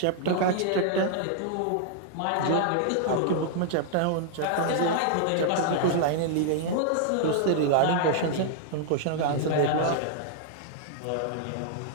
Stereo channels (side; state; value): both; different; correlation -0.01